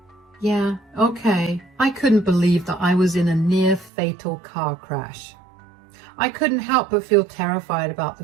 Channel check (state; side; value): drops out; left; at 3.9 s